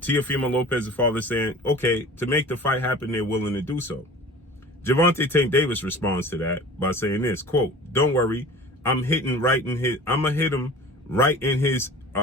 Lopez's father saying, okay, to make the fight happen, they're willing to do so. Gervonta Tank Davis responds to that by saying this, quote, don't worry, I'm gonna hit him right in his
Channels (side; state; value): both; normal; correlation 0.41